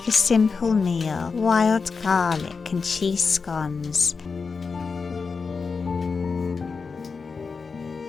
a simple meal: wild garlic and cheese scones.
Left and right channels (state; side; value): quieter; right; 4.9 dB